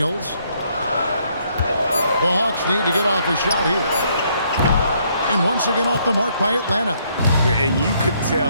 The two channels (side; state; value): both; inverted; correlation -0.70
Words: The Hawks need to get off a shot here. And once again off the mark by Atlanta. And you could